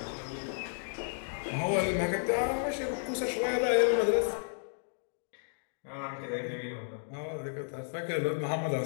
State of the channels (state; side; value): silent; right; digital silence